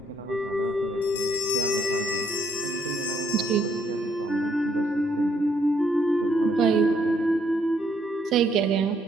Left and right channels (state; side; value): normal; both; correlation 0.70